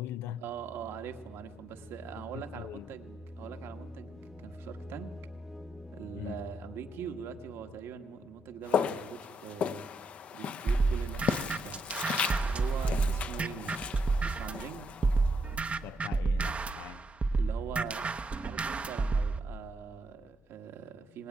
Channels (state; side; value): normal; both; correlation 0.78